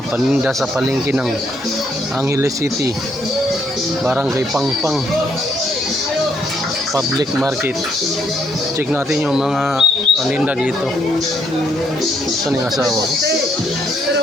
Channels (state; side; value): normal; both; correlation 0.71